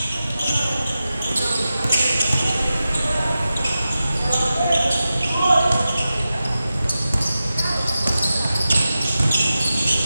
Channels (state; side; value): inverted; both; correlation -0.93